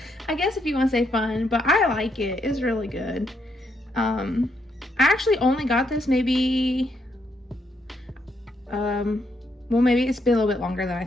guess if you want to say fun, but I like it. It's really good. I actually only got this maybe, well, maybe it's been a little bit longer than I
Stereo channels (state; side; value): normal; both; correlation 0.76